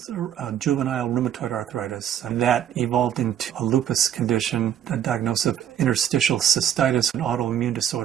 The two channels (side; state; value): left; quieter; 10.0 dB